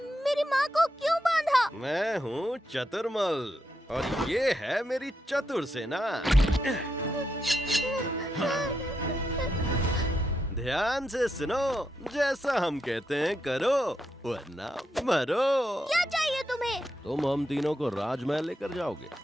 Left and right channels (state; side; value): normal; both; correlation 0.83